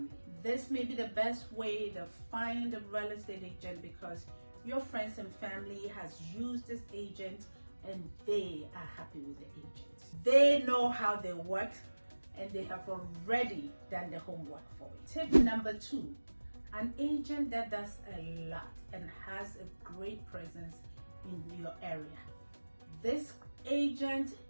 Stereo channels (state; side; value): inverted; both; correlation -1.00